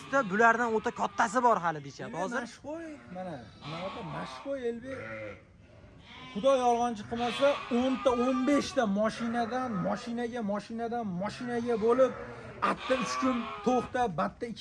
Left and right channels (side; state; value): both; identical; correlation 1.00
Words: ta bulardan o'ta kattasi bor hali deyishyapti. Hozir mashqo'y mana bunaqa mashqo'y elbek. Xudo yolg'onchi qilmasa 10 ta 15 ta mashinadan mashinaga bo'lib, atta 3 kun to'xtab, batta